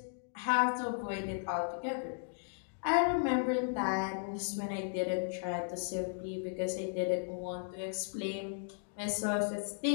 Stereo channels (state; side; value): silent; right; digital silence